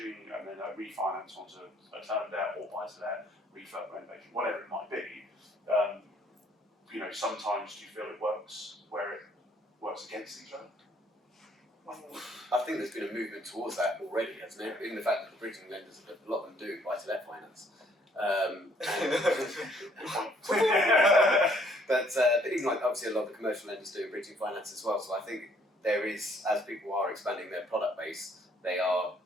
and then a refinance onto a term debt or buy-to-let, refurb renovation, whatever it might be. Sometimes do you feel it works where it works against each other? I think there's been a movement towards that already, hasn't it? In the fact that the bridging lenders, a lot of them do buy-to-let finance. But even like obviously a lot of the commercial lenders do bridging finance as well. So I think there is, as people are expanding their product base, they are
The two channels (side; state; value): both; normal; correlation 0.64